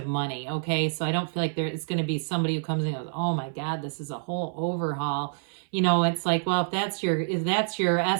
money, okay? So I don't feel like it's going to be somebody who comes in and goes, oh my God, this is a whole overhaul. It's like, well, if that's your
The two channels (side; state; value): left; silent; 57 dB below the other